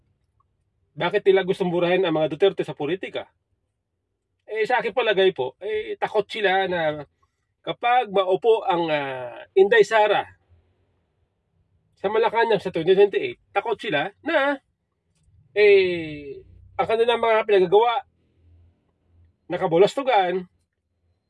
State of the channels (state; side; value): identical; both; correlation 1.00